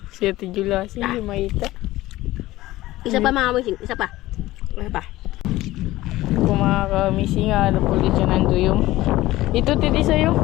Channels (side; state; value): right; quieter; 17.1 dB